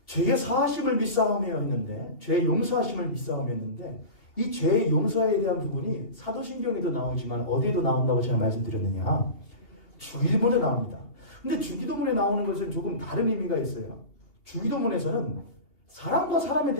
죄의 사하심을 믿사오며 했는데, 죄의 용서하심을 믿사오며 했는데, 이 죄의 용서에 대한 부분이 사도신경에도 나오지만 어디에도 나온다고 제가 말씀드렸느냐? 주일본에 나옵니다. 근데 주기도문에 나오는 것은 조금 다른 의미가 있어요. 주기도문에서는 사람과 사람에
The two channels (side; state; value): right; late; 2.6 ms